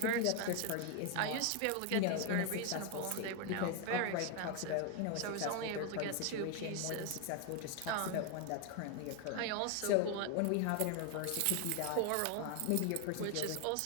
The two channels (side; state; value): both; different; correlation 0.01